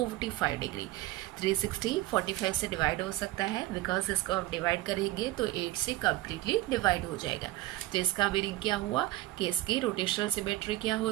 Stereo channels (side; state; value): left; quieter; 16.9 dB